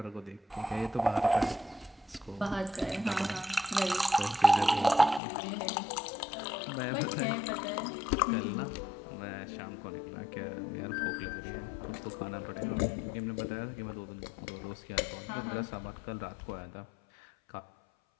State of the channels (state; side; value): drops out; right; at 5.2 s